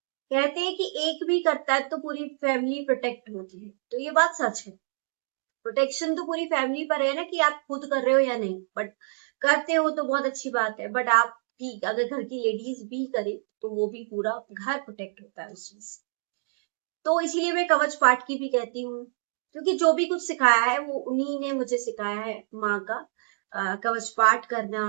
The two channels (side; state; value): left; silent; digital silence